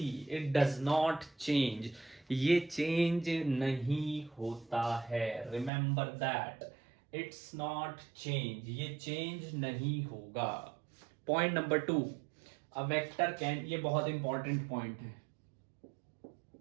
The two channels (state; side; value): drops out; left; at 5.7 s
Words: it does not change, ये चेंज नहीं होता है. Remember that, it's not change, ये चेंज नहीं होगा. Point number 2, a vector can, ये बहुत इंपॉर्टेंट पॉइंट है,